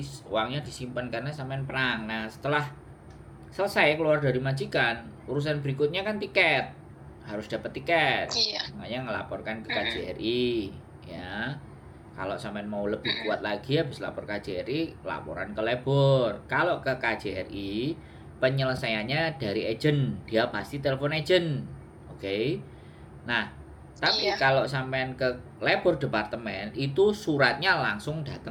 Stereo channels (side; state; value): both; identical; correlation 1.00